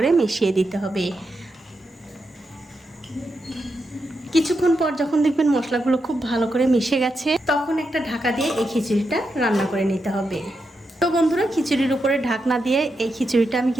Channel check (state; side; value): normal; both; correlation 0.85